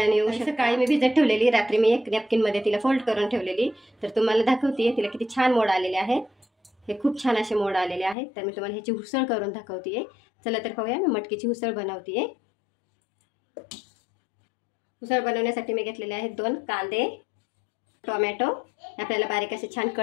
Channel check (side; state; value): right; drops out; at 8.2 s